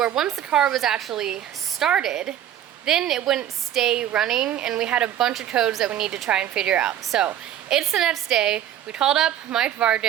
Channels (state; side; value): quieter; left; 11.0 dB